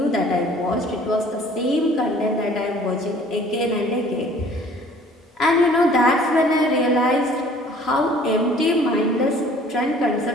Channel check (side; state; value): both; normal; correlation 0.53